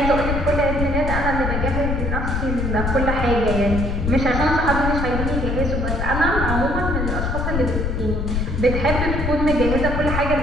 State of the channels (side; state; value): left; noise; rumble, 1 dB below the sound